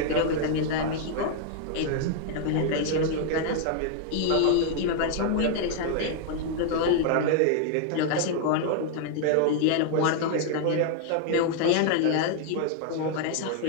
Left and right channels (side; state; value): both; different; correlation 0.00